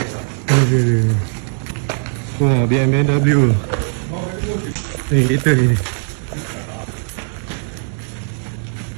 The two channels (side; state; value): left; silent; 59 dB below the other